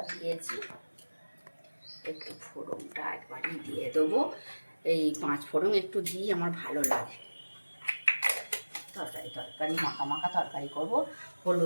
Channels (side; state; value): both; inverted; correlation -1.00